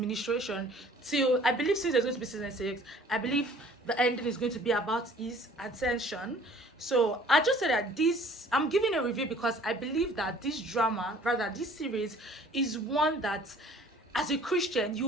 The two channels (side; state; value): both; normal; correlation 0.53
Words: till, I believe, since there's going to be season 6, I believe the ending is going to be about his ascension. So I just said that I'm giving a review because I believe that this drama, rather this series, is one that as a Christian you'll